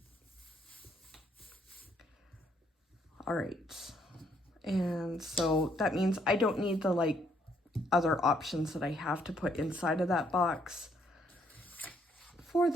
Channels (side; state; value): both; normal; correlation 0.70